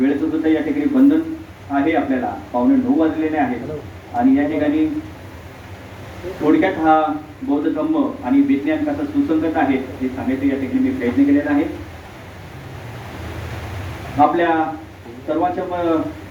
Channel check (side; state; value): both; identical; correlation 1.00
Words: सुद्धा या ठिकाणी बंधन आहे, आपल्याला 9:15 वाजलेले आहेत आणि या ठिकाणी थोडक्यात हा बौद्ध धम्म आणि विज्ञान कसं सुसंगत आहे हे सांगायचं या ठिकाणी मी प्रयत्न केलेला आहे. आपल्या सर्वांच्या